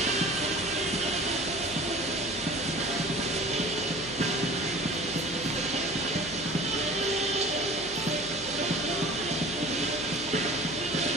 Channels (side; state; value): right; noise; hum, 18 dB below the sound